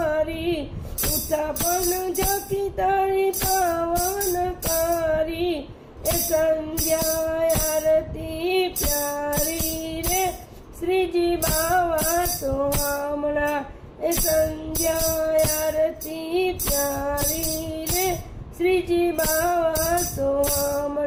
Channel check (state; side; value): identical; both; correlation 1.00